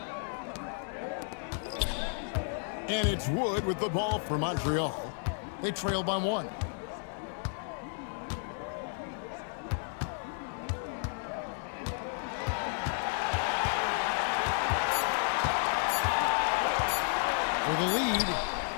And it's Wood with the ball for Montreal. They trail by 1. For the lead.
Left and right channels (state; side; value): silent; right; 56 dB below the other